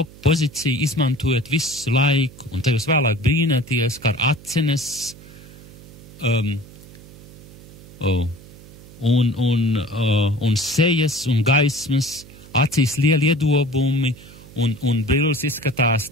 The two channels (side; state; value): right; noise; hum, 20 dB below the sound